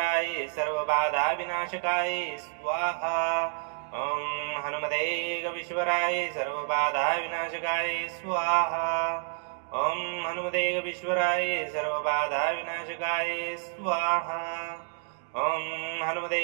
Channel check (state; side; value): silent; left; 58 dB below the other